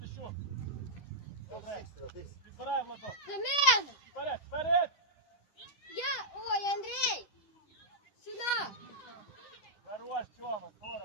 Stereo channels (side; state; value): right; late; 10 ms